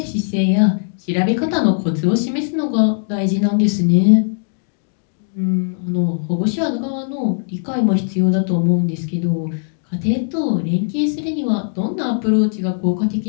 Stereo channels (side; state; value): right; silent; digital silence